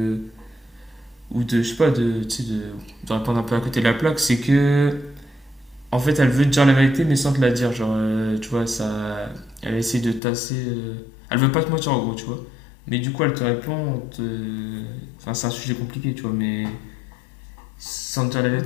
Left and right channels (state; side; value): drops out; right; at 10.2 s